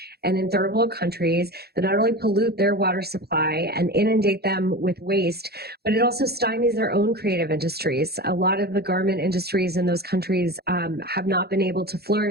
and in third world countries that not only pollute their water supply and inundate them with waste, but it also stymies their own creative industries. A lot of the garment industries in those countries have not been able to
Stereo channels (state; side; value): late; left; 0.46 ms